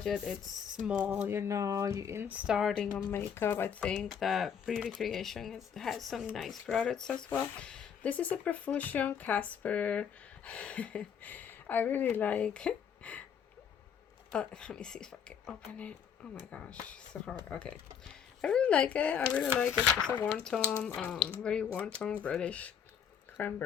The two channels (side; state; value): right; quieter; 7.8 dB